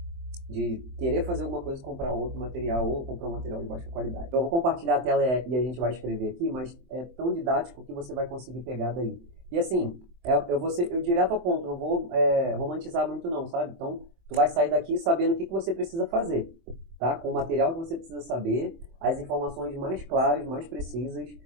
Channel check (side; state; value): left; late; 24 ms